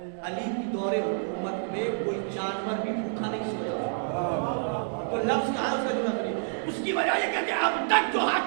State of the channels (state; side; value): silent; left; digital silence